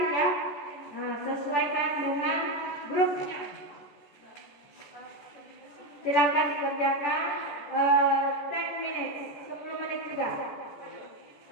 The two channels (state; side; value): late; right; 14 ms